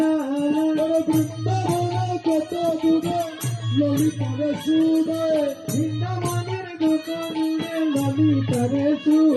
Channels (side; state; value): both; identical; correlation 1.00